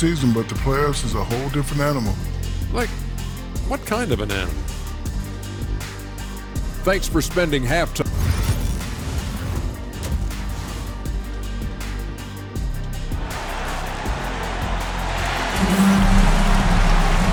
but the playoffs is a whole different animal. Like, what kind of an animal? Thanks for spending halftime.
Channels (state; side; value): identical; both; correlation 1.00